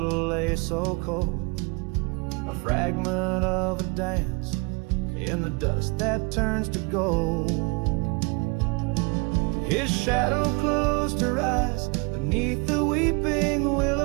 lay so cold, a fragment of a dance in the dust that turns to gold. His shadow closed her eyes beneath the weeping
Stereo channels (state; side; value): quieter; left; 29.8 dB